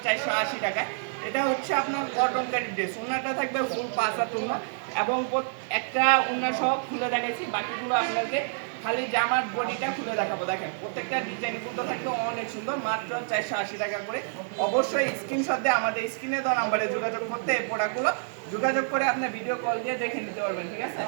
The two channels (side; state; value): left; silent; digital silence